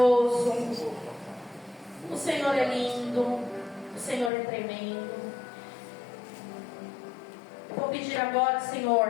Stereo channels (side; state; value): right; drops out; at 4.3 s